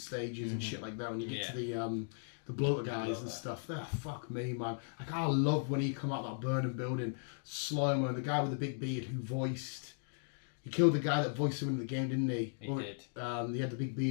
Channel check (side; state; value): right; silent; digital silence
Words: and shit like that. When you get to the bloater guys and stuff, they're fuck me, man. Like I love when he come out of that burning building, slow-mo, the guy with the big beard who voiced. He killed the guy that voiced him in the game, didn't he? He did. He had the big